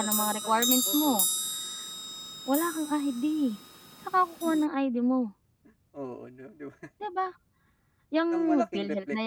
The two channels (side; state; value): both; identical; correlation 1.00